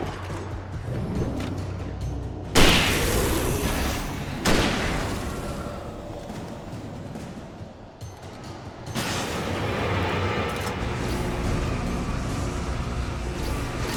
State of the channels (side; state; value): both; identical; correlation 1.00